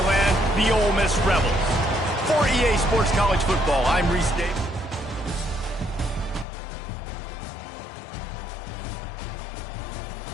land, the Ole Miss Rebels. For EA Sports College Football, I'm Reese Davis.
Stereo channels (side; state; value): right; drops out; at 6.5 s